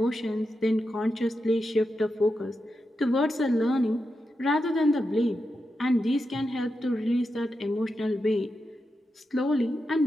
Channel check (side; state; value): both; normal; correlation 0.88